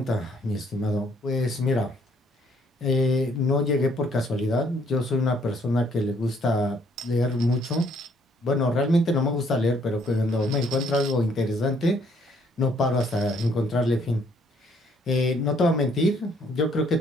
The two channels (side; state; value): both; normal; correlation 0.66